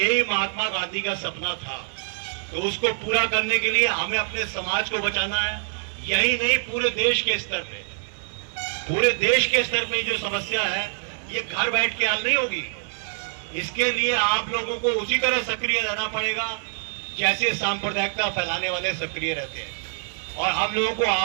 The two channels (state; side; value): silent; left; 62 dB below the other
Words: महात्मा गांधी का सपना था। तो उसको पूरा करने के लिए हमें अपने समाज को बचाना है, यही नहीं पूरे देश के स्तर पे। पूरे देश के स्तर पे जो समस्या है ये घर बैठ के हल नहीं होगी। इसके लिए आप लोगों को उसी तरह सक्रिय रहना पड़ेगा जैसे सांप्रदायिकता फैलाने वाले सक्रिय रहते हैं, और हम लोगों को